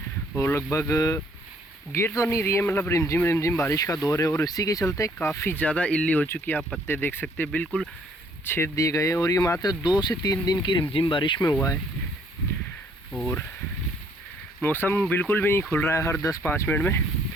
और लगभग गिर तो नहीं रही है, मतलब रिमझिम रिमझिम बारिश का दौर है और इसी के चलते काफ़ी ज़्यादा इल्ली हो चुकी है। आप पत्ते देख सकते हैं बिल्कुल छेद दिए गए हैं और ये मात्र 2 से 3 दिन की रिमझिम बारिश में हुआ है और मौसम बिल्कुल भी नहीं खुल रहा है। हर 10-5 मिनट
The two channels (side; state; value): both; normal; correlation 0.64